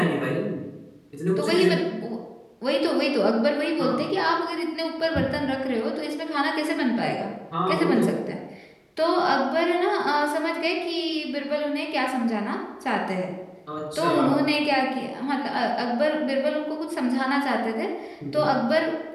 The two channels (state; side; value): identical; both; correlation 1.00